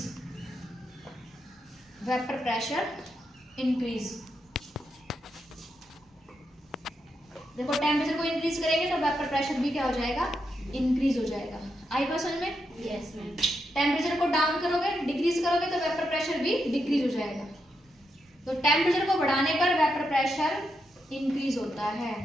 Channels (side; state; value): both; normal; correlation 0.83